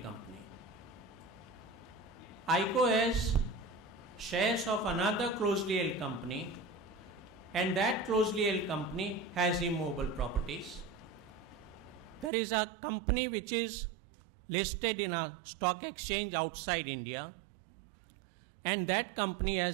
company. ICO has shares of another closely held company, and that closely held company has immovable properties. There is a company which is listed in a stock exchange outside India, and that company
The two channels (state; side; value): drops out; left; at 12.3 s